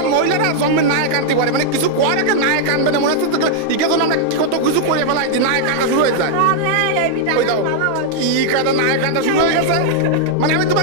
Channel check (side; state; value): both; different; correlation -0.01